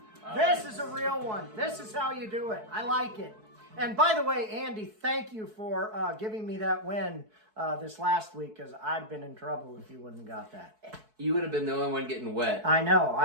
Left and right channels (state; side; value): late; left; 4.6 ms